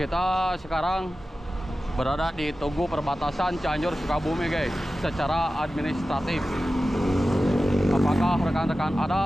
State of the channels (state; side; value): normal; both; correlation 0.94